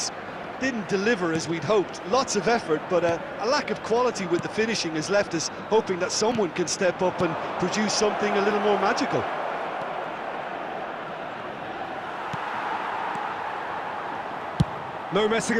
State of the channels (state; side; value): identical; both; correlation 1.00